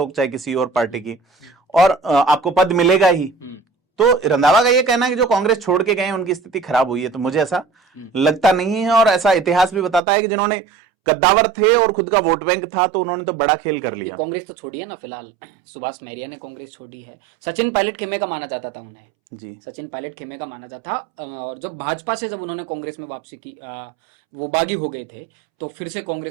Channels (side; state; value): left; drops out; at 10.0 s